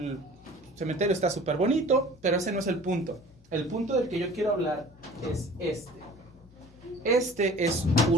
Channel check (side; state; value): both; normal; correlation 0.46